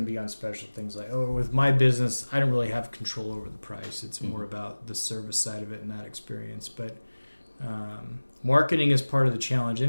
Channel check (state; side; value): inverted; both; correlation -1.00